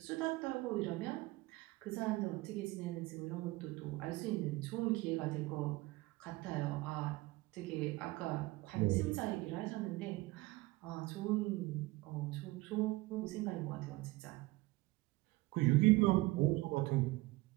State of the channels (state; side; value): quieter; left; 21.0 dB